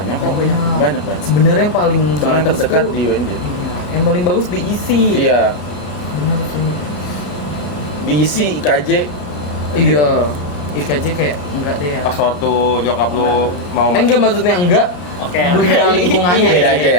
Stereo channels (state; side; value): late; right; 33 ms